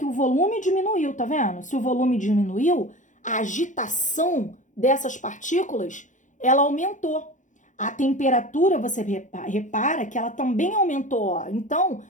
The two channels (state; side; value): late; right; 0.36 ms